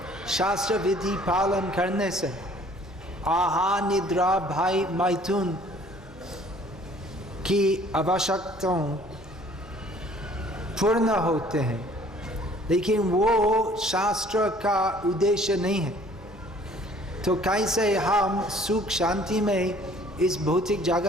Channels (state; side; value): normal; both; correlation 0.55